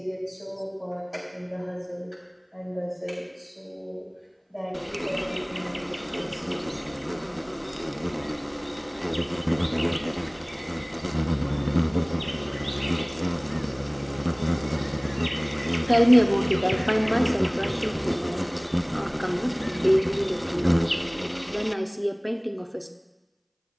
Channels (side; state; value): both; identical; correlation 1.00